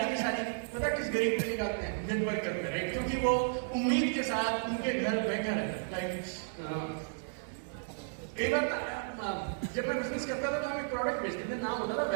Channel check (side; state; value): left; silent; digital silence